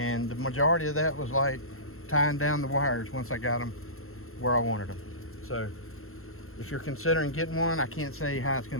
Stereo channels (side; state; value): right; late; 0.62 ms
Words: the majority of that was like tying down the wires once I got them where I wanted them. So if you're considering getting one, I can't say how it's